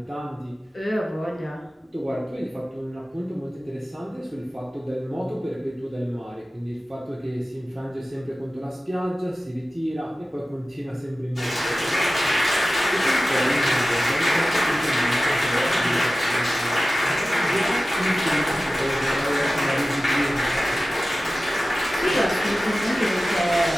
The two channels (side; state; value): both; normal; correlation 0.95